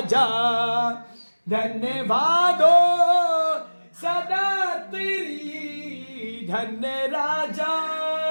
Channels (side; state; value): both; inverted; correlation -1.00